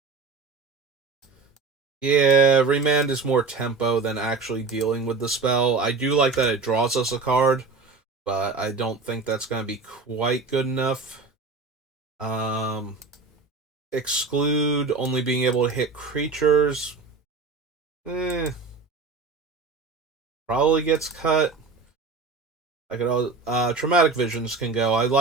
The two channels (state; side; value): quieter; left; 4.3 dB